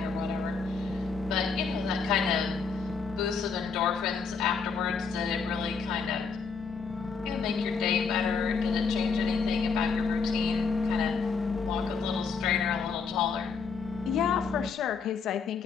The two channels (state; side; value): quieter; right; 5.2 dB